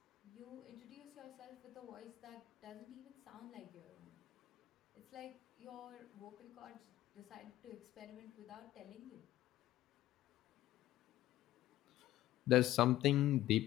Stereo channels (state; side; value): quieter; right; 14.9 dB